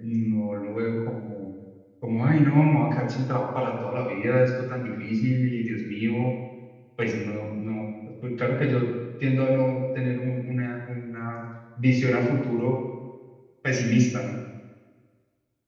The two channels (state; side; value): identical; both; correlation 1.00